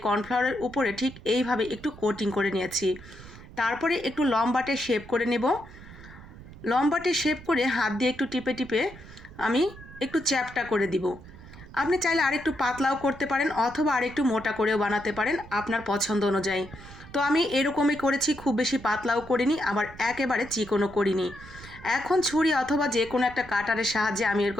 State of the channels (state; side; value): noise; right; rumble, 17 dB below the sound